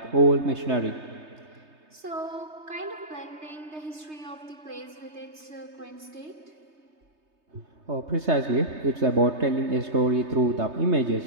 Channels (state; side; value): late; left; 3.3 ms